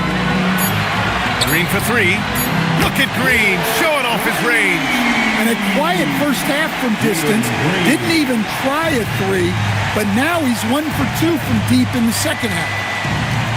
Green for 3. Look at Green showing off his range. And a quiet first half from distance. Didn't even try a 3, but now he's 1 for 2 from deep in the second half.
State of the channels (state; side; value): identical; both; correlation 1.00